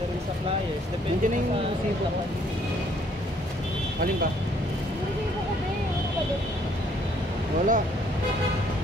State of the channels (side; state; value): both; normal; correlation 0.64